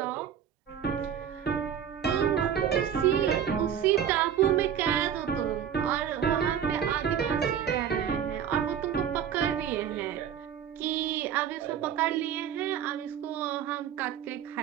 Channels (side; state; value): left; quieter; 9.0 dB